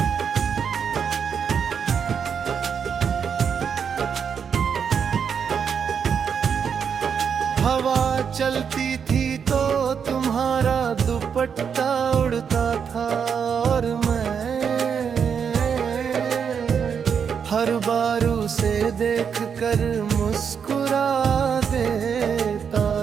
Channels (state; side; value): quieter; left; 7.0 dB